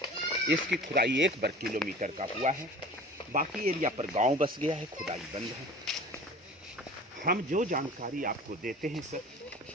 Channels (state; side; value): normal; both; correlation 0.41